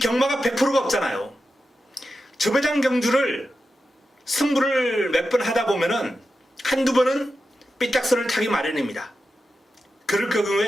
100%가 없잖아요. 저배당 경주를 승부를 몇 번 하다 보면은 한두 번은 삐딱선을 타기 마련입니다. 그럴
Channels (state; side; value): normal; both; correlation 0.90